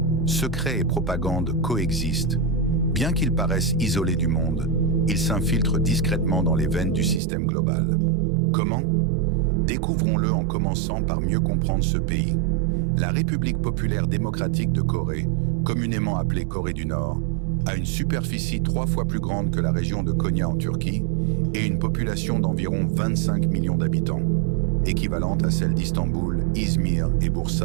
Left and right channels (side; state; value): left; drops out; at 7.2 s